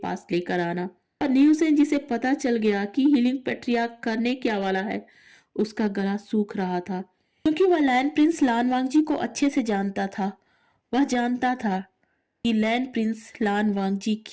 पास लेकर आना। और नी हुसैन जिसे पता चल गया कि हीलिंग पैट्रियार्क करने क्या वाला है, उसका गला सूख रहा था, क्योंकि वह लैंड प्रिंस लान वांगजी को अच्छे से जानता था। वह जानता था कि लैंड प्रिंस लान वांगजी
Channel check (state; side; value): identical; both; correlation 1.00